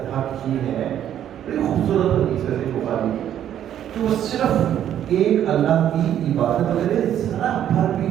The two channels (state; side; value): quieter; left; 10.6 dB